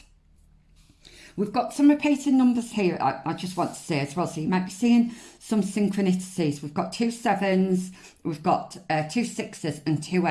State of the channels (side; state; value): both; identical; correlation 1.00